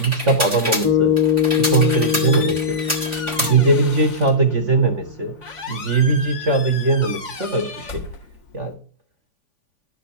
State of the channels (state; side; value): late; left; 3.5 ms